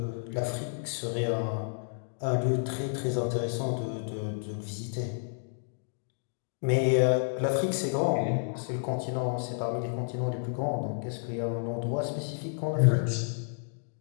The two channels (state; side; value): silent; right; digital silence